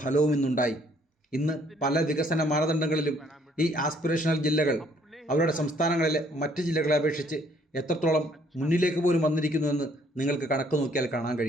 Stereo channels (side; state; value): both; normal; correlation 0.64